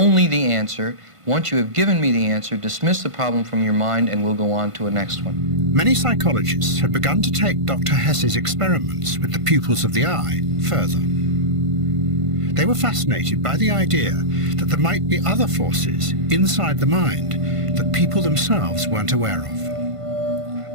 the answer. Once you have given me the answer, dismiss the problem from your mind, and we'll go on to a next one. Many psychologists had begun to take Dr. Hess's experiments with the pupils of the eye further. They were fascinated by the idea that there might be other forces inside the mind that people themselves weren't aware of.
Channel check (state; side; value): late; left; 1.5 ms